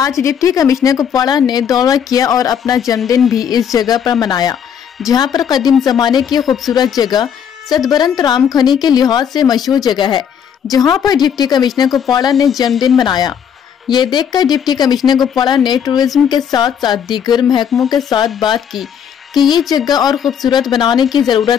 डिप्टी कमिश्नर कुपवाड़ा ने दौरा किया और अपना जन्मदिन भी इस जगह पर मनाया, जहां पर कदीम जमाने की खूबसूरत जगह सतबरंत राम खनी के लिहाज से मशहूर जगह है, जहां पर डिप्टी कमिश्नर कुपवाड़ा ने जन्मदिन मनाया। ये देखकर डिप्टी कमिश्नर कुपवाड़ा ने टूरिज्म के साथ साथ दीगर महकमों के साथ बात की कि ये जगह और खूबसूरत बनाने की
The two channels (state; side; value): quieter; right; 8.2 dB